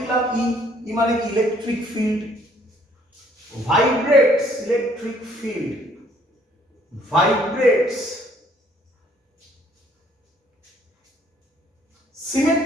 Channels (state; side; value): normal; both; correlation 0.62